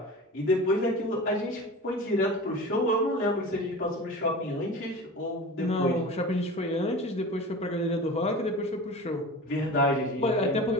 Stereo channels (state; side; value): normal; both; correlation 0.34